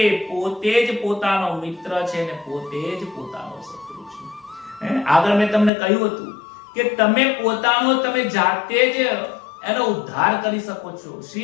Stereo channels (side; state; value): right; drops out; at 5.7 s